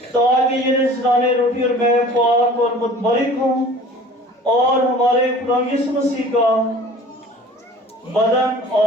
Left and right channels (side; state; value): both; normal; correlation 0.45